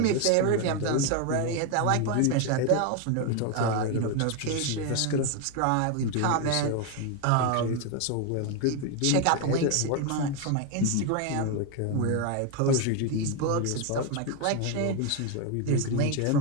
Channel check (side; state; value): both; different; correlation 0.01